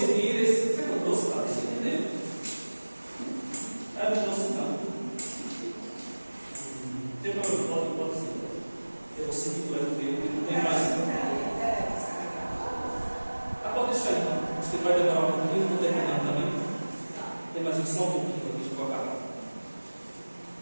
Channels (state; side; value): inverted; both; correlation -1.00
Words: esse. Você não trouxe para você entender? Eu não trouxe não. Tem problema, pode ser. Eu vou seguir por aqui, porque não tem mais. Ah, pode deixar aí, então. Acho que vai demorar um pouquinho, estou terminando também. Tem mais só um pouquinho para a gente colocar.